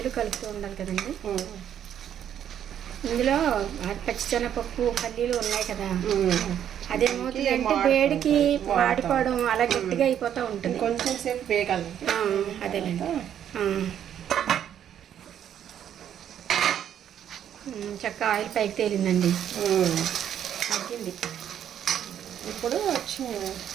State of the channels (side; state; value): left; quieter; 9.8 dB